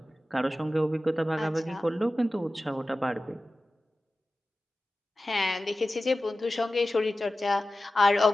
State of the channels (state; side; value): normal; both; correlation 0.95